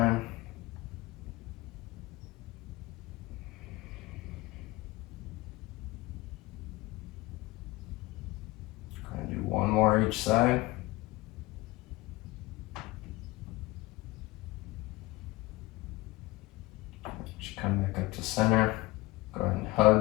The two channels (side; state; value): right; quieter; 20.4 dB